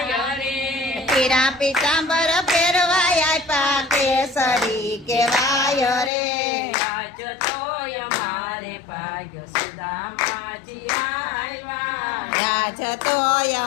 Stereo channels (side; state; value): right; drops out; at 6.1 s